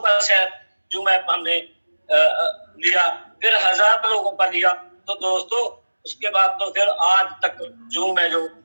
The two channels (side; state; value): both; inverted; correlation -1.00